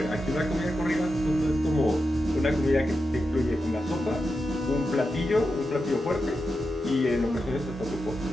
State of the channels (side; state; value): both; normal; correlation 0.89